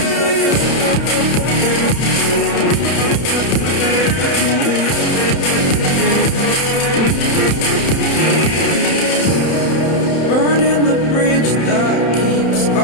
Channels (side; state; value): right; late; 31 ms